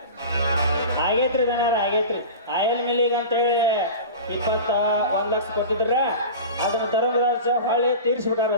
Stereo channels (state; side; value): inverted; both; correlation -0.33